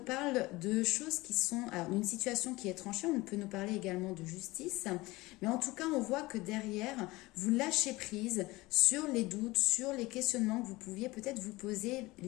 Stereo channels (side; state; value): right; quieter; 20.7 dB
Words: parle de choses qui sont... Alors, d'une situation qui est tranchée, on peut nous parler également de justice, mais en tout cas, on voit que derrière, vous lâchez prise sur les doutes, sur les questionnements que vous pouviez peut-être vous poser